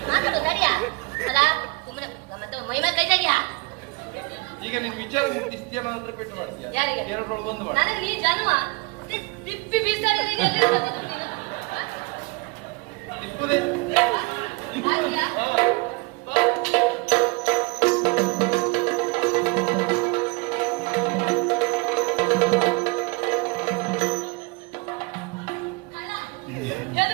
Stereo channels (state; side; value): quieter; left; 27.0 dB